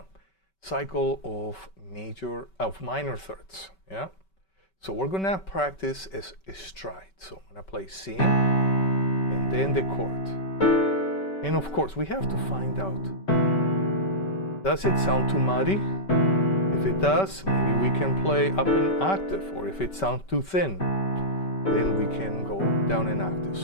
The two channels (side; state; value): right; late; 5.2 ms